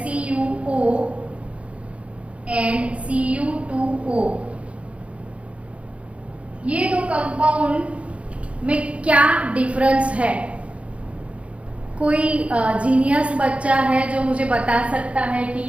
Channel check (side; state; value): left; late; 0.062 ms